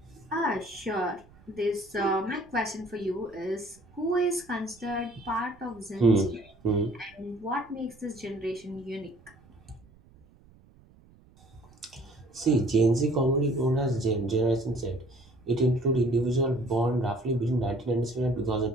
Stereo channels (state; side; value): noise; right; rumble, 27 dB below the sound